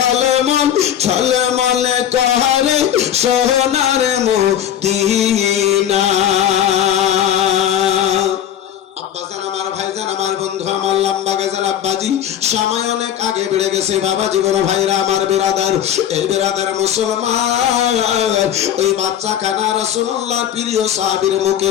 ঝলমল করে সোনার মদিনা। আব্বাজান আমার, ভাইজান আমার, বন্ধু আমার, লম্বা গেজাল আব্বাজি, সময় অনেক আগে বেড়ে গেছে বাবা জীবন, ভাইরা আমার, বেরাদার, এই বেরাদার মুসলমান, ওই বাচ্চা খানা রাসূলুল্লাহর প্রিয় সাহাবীর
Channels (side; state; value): right; quieter; 10.2 dB